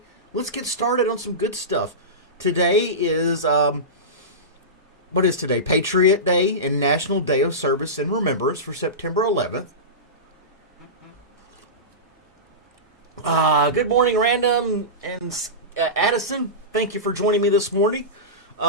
Let's get started on some good stuff. Today is, what is today? Patriot Day and National Day of Service and Remembrance for September 11th. Good morning, Random and Addison. Thank you for joining me this morning.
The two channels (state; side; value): normal; both; correlation -0.19